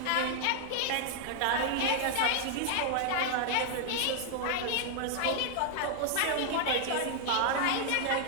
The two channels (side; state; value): both; different; correlation 0.00